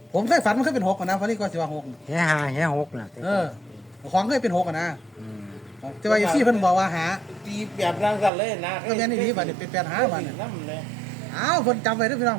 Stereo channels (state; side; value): drops out; left; at 8.3 s